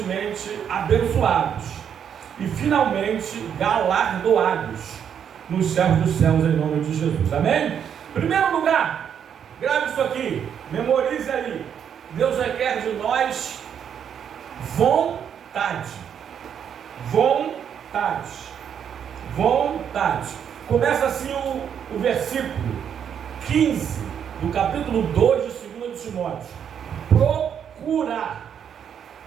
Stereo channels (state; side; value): quieter; left; 8.3 dB